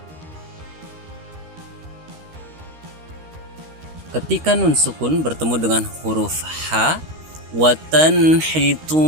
Ketika nun sukun bertemu dengan huruf ha, wa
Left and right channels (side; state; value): left; late; 13 ms